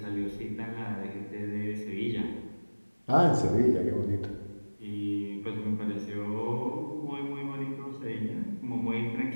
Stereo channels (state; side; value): inverted; both; correlation -1.00